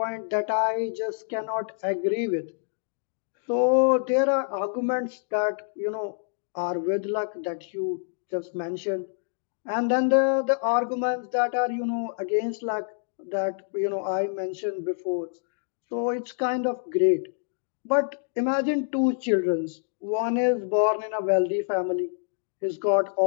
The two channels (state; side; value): silent; right; digital silence